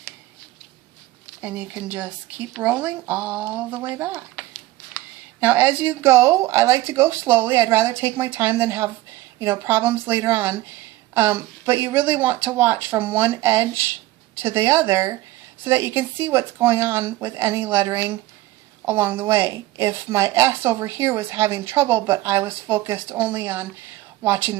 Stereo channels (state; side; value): quieter; left; 17.1 dB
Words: and you can just keep rolling all the way back. Now as you go, I like to go slowly. I'd rather take my time than have problems later on. But you really want to watch from one edge to the other so that you can see what's going on with any lettering along the way. If my S over here was having trouble, but I was focused only on watching